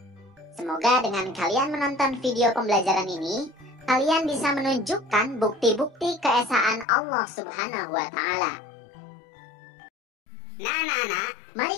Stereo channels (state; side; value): drops out; right; at 6.9 s